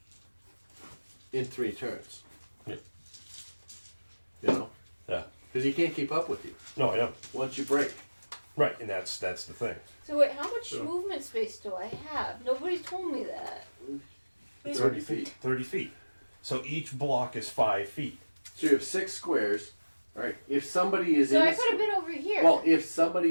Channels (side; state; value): both; inverted; correlation -1.00